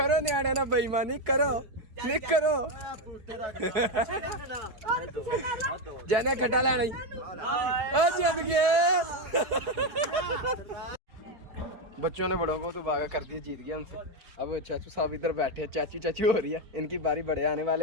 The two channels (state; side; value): late; left; 4.8 ms